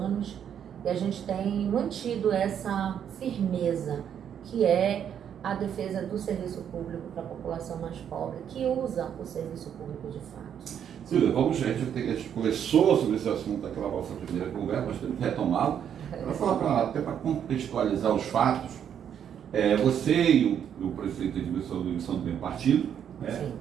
e a gente tem mantido essa firmeza, que é a defesa do serviço público para a população mais pobre, que usa o serviço público de fato. Silvia, a gente conversou sobre esse assunto naquela nossa primeira conversa, mas temos que retomá-lo. Até para contextualizar os fatos, você e o prefeito Edmilson são do mesmo partido, né?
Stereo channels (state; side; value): quieter; left; 8.8 dB